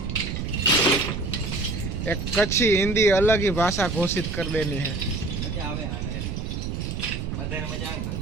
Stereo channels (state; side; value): noise; right; rumble, 4 dB below the sound